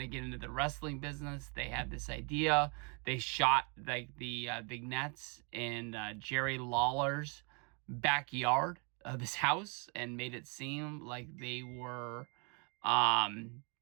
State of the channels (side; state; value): left; quieter; 34.3 dB